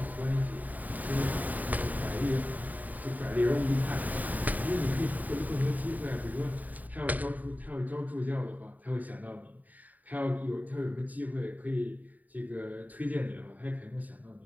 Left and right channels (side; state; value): left; late; 0.079 ms